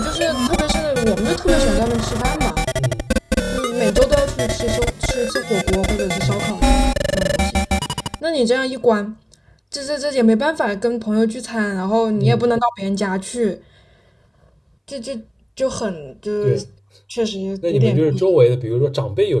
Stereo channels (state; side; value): identical; both; correlation 1.00